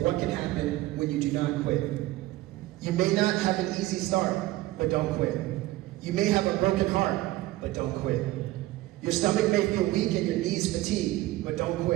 what can happen when you do not quit. You may not have an easy start, but don't quit. You may have a broken heart, but don't quit. Your stomach may feel weak and your knees fatigued, but don't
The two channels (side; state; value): left; quieter; 17.4 dB